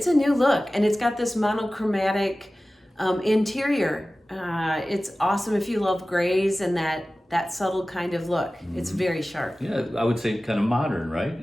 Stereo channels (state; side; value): normal; both; correlation 0.97